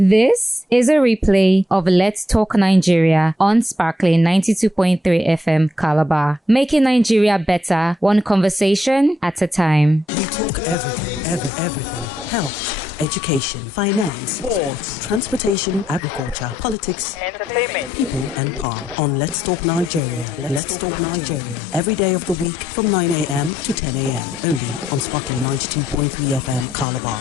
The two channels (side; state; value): both; normal; correlation 0.77